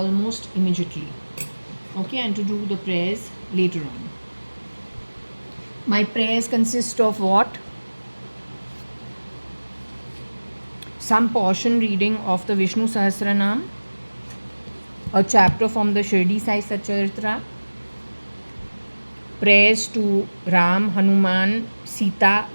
immediately. Okay, and to do the prayers later on. My prayers consist of what? Some portion reading of the Vishnu Sahasranam, a chapter from the Shirdi Sai Satcharitra, prayers to Ram, Hanuman, Sita,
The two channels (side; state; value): both; inverted; correlation -1.00